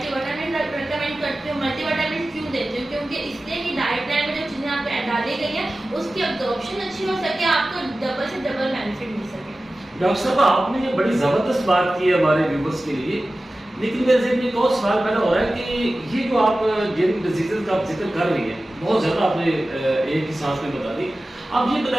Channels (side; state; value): both; normal; correlation 0.96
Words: وٹامن ریکمینڈ کرتی ہوں۔ ملٹی وٹامن کیوں دیتی ہوں؟ کیونکہ اس لیے کہ ڈائٹ پلان میں جو چیزیں آپ کو ڈالی گئی ہیں اس کی ابزارپشن اچھی ہو سکے، آپ کو ڈبل سے ڈبل بینیفٹ مل سکے۔ ڈاکٹر صاحب، آپ نے یہ بڑی زبردست بات کی ہے ہمارے ویورز کے لیے، لیکن میرے ذہن میں ایک اور سوال پیدا ہو رہا ہے کہ یہ جو آپ جن ڈیزیزز کا آپ ذکر کر رہی ہیں بہت زیادہ آپ نے ایک ہی سانس میں بتا دی، آپ یہ